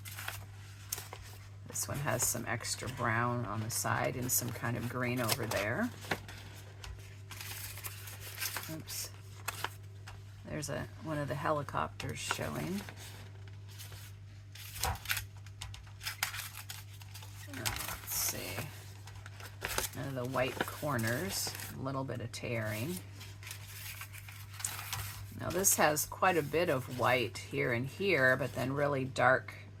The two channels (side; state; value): both; identical; correlation 1.00